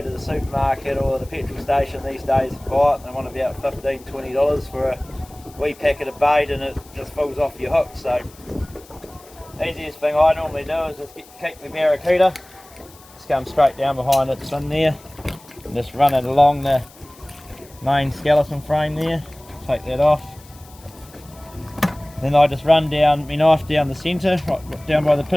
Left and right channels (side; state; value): left; noise; hiss, 24 dB below the sound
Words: to the supermarket or the petrol station these days and buy it. They want about $15–20 for a wee packet of bait, and it just falls off your hook. So the easiest thing I normally do is just keep my barracuda, just come straight down behind its fin there and just run it along the main skeleton frame there. Take that off. Then I just run down my knife down the centre, right down by the